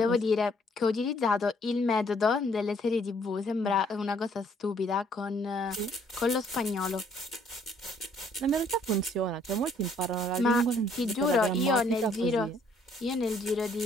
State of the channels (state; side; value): normal; both; correlation 0.64